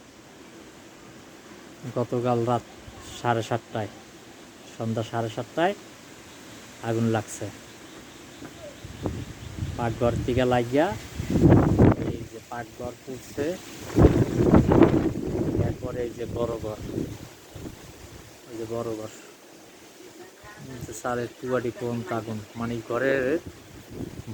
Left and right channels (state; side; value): identical; both; correlation 1.00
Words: গতকাল রাত 7:30টায়, সন্ধ্যা 7:30টায় আগুন লাগছে। পাকঘর থেকে লাগিয়া এই যে পাকঘর পুড়ছে। এরপরে এই যে বড় ঘর, ওই যে বড় ঘর, সারের টুয়াটি পর্যন্ত আগুন, মানে ঘরের